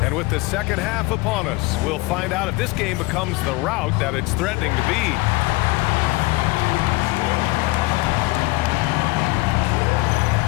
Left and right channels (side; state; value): right; quieter; 22.0 dB